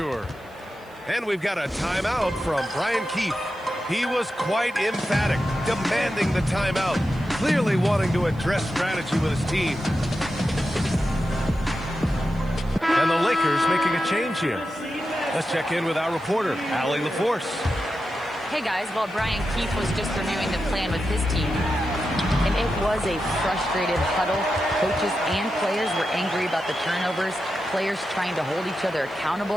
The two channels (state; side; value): noise; right; hiss, 29 dB below the sound